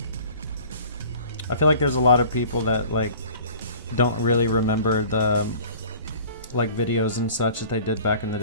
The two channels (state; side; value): inverted; both; correlation -0.47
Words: I feel like there's a lot of people that like don't really remember the like videos and such that they did back in the